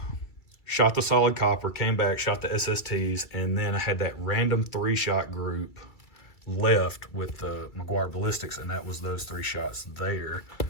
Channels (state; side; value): late; right; 2.3 ms